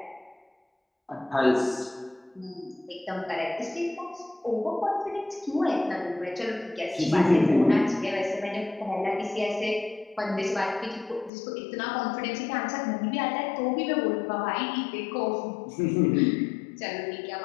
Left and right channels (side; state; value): right; drops out; at 11.3 s